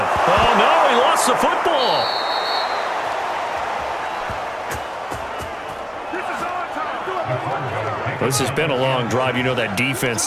Oh, no, he lost the football. This has been a long drive. You know that defense,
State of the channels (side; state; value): both; identical; correlation 1.00